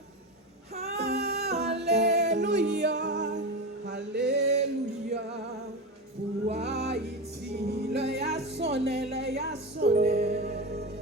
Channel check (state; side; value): normal; both; correlation 0.20